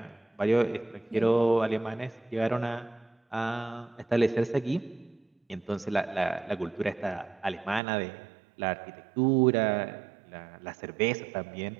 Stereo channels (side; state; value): left; drops out; at 7.8 s